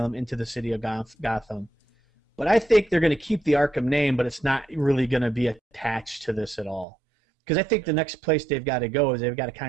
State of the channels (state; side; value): drops out; left; at 6.9 s